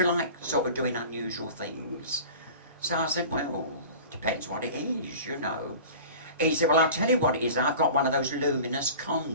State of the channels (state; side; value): inverted; both; correlation -0.39